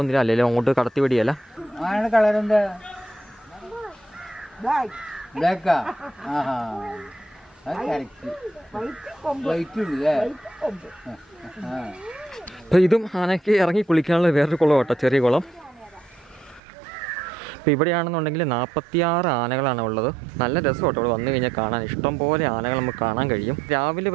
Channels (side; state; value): left; drops out; at 16.6 s